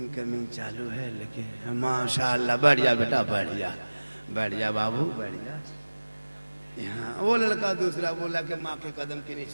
चालू है, लेकिन माशाल्लाह बढ़ जा बेटा, बढ़ जा बाबू बढ़ जा। यहाँ वो लड़का दूसरा बोला कि माँ के कदम के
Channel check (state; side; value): inverted; both; correlation -1.00